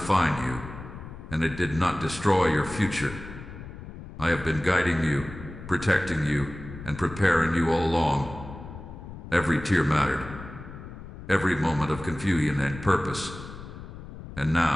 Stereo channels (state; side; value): noise; left; rumble, 13 dB below the sound